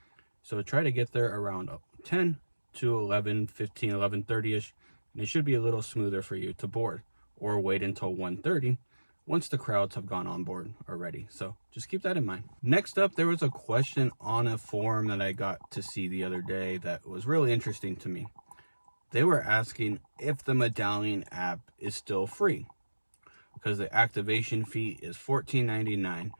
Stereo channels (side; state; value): both; inverted; correlation -1.00